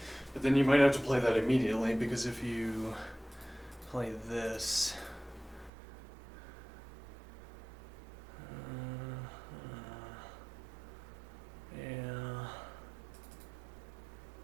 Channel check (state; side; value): drops out; left; at 5.7 s